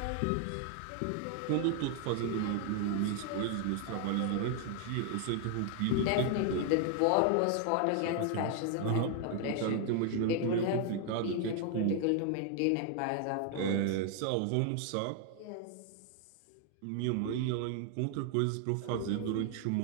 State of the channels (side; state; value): both; different; correlation 0.00